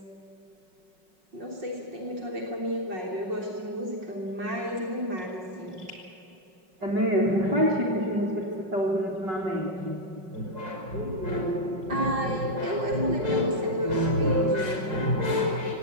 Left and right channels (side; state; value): left; late; 5.4 ms